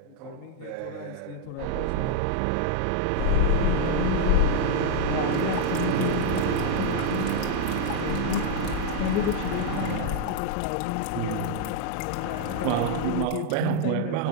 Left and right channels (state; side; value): different; both; correlation -0.01